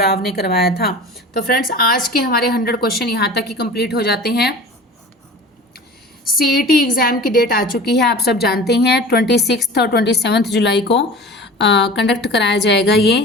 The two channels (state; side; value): normal; both; correlation 0.38